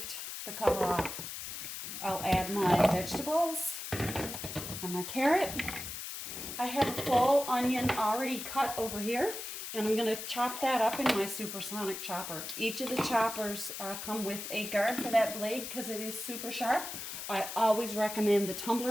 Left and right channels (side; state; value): left; noise; hiss, 7 dB below the sound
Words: the cover off. I'll add my vegetables and my carrot. I have a full onion already cut over here, and I'm going to chop that up in my supersonic chopper. Each of the choppers come with a guard for that blade because it is super sharp. I always recommend the